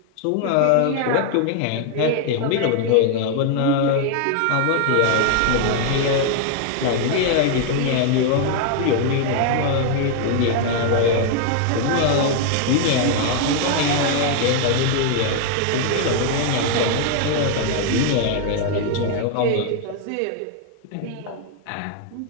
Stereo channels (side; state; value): both; different; correlation 0.00